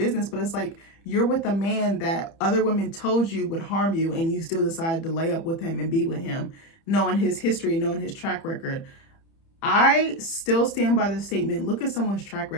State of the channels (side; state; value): right; late; 30 ms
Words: but it's like, you're with a man that other women told you would harm you, and you still decided to lay up with him and be with him, knowing his history, knowing his track record. I still stand by the statement. Look at someone's track